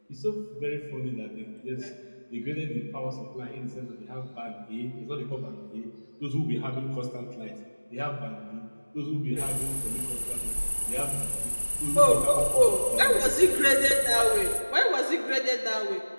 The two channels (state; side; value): inverted; both; correlation -1.00